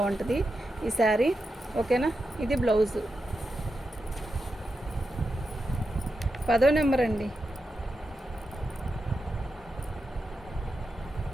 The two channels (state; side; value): normal; both; correlation 0.88